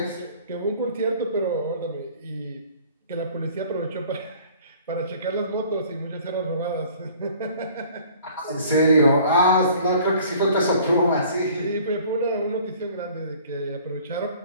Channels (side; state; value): both; inverted; correlation -0.52